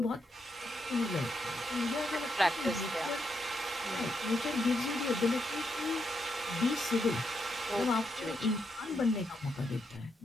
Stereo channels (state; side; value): normal; both; correlation 0.81